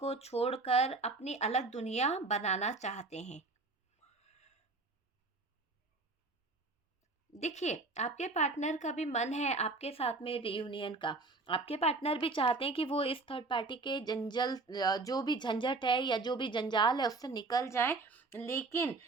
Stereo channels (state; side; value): quieter; left; 3.6 dB